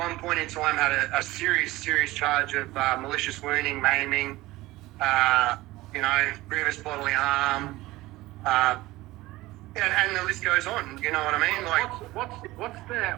point in time, had a serious charge of malicious wounding, maiming, grievous bodily harm, and the list goes on. You know what I mean? Like,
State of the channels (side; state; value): left; quieter; 18.5 dB